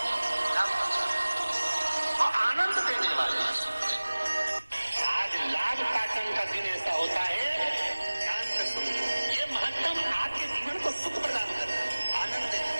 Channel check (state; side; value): inverted; both; correlation -1.00